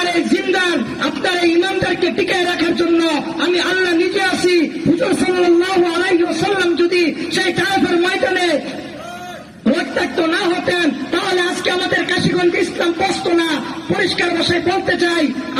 এই জিন্দার, আপনার এই ইমানদারকে টিকায় রাখার জন্য আমি আল্লাহ নিজে আছি। হুজুর সাল্লাল্লাহু আলাইহি ওয়াসাল্লাম যদি সেই তায়েফের ময়দানে রক্তাক্ত না হতেন তাহলে আজকে আমাদের কাশীগঞ্জ ইসলাম বসতো না। পরিষ্কার ভাষায় বলতে চাই,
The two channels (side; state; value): both; identical; correlation 1.00